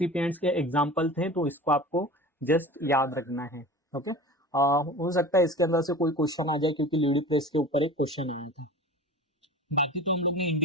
के एग्जांपल थे, तो इसको आपको जस्ट याद रखना है। ओके। हो सकता है इसके अंदर से कोई क्वेश्चन आ जाए, क्योंकि लीडी प्रेस के ऊपर एक क्वेश्चन आया था। बाकी तो हम लोग ने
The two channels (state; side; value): normal; both; correlation 0.36